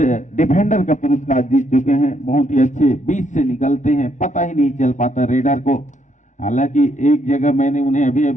डिफेंडर का पुरस्कार जीत चुके हैं। बहुत ही अच्छे बीच से निकलते हैं, पता ही नहीं चल पाता रेडर को। हालांकि एक जगह मैंने उन्हें अभी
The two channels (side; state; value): right; late; 0.36 ms